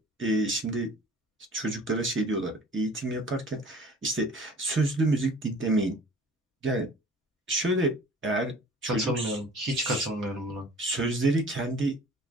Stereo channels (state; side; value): normal; both; correlation 0.47